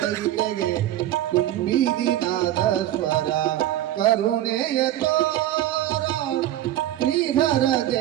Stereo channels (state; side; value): quieter; left; 13.3 dB